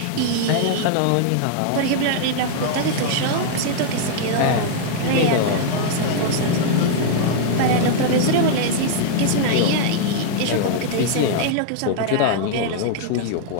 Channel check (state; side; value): different; both; correlation -0.01